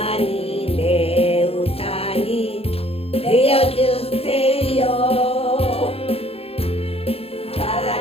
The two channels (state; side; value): late; right; 0.28 ms